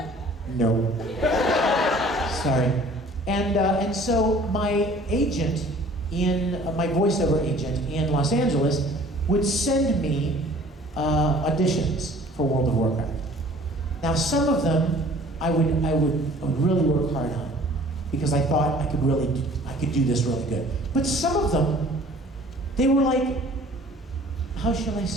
no. Sorry. And so my agent, my voiceover agent in Los Angeles would send me auditions for World of Warcraft. Now some of them I would really work hard on. because I thought I could do this really good. But some of them, they were like, how shall I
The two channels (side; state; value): both; normal; correlation 0.51